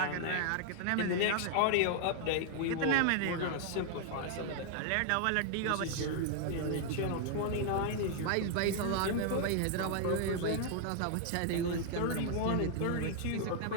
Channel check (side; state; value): both; different; correlation 0.00